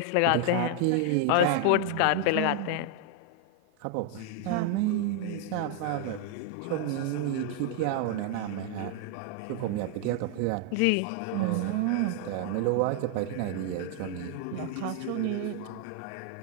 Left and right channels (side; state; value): both; different; correlation 0.00